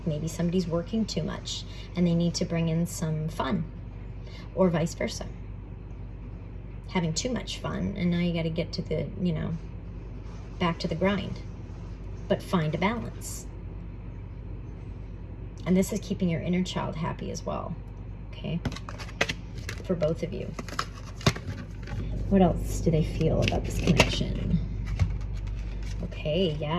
maybe somebody's working too much and they need to bring in some fun, or vice versa. Having too much fun and now you got to get to the, you know, back to the grind, but find a balance. And this is keeping your inner child happy as well, okay, for both of you. What else do they feel about this connection? Okay,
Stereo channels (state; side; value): identical; both; correlation 1.00